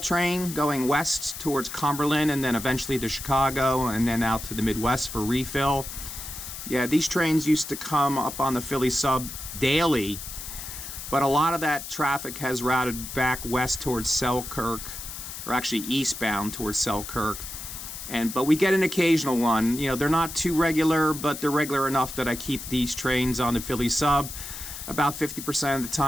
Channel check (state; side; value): noise; left; hiss, 9 dB below the sound